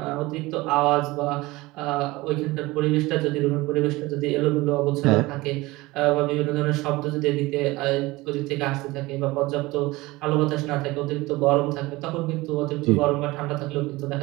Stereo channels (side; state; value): left; quieter; 20.7 dB